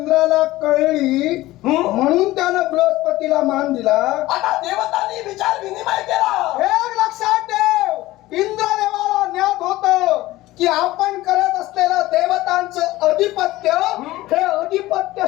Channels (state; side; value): quieter; right; 17.3 dB